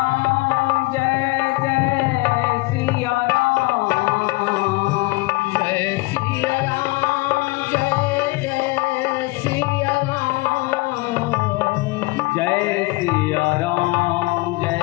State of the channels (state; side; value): quieter; right; 22.9 dB